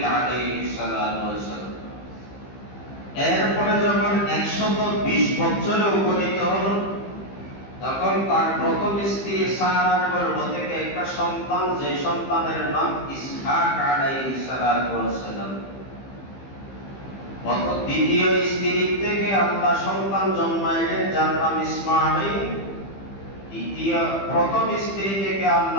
আলাইহিস সালাতু ওয়াস সালাম। এরপরে যখন 120 বছরে উপনীত হল, তখন তার প্রথম স্ত্রী সারার গর্ভ থেকে একটা সন্তান, যে সন্তানের নাম ইসহাক আলাইহিস সালাতু ওয়াস সালাম। দ্বিতীয় স্ত্রী থেকে আল্লাহ সন্তান জন্মাইলেন যার নাম ইসমাঈল। প্রথম স্ত্রী থেকে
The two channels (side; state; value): right; late; 15 ms